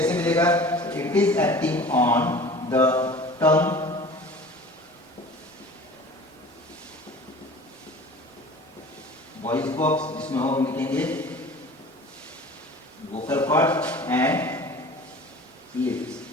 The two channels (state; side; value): normal; both; correlation 0.42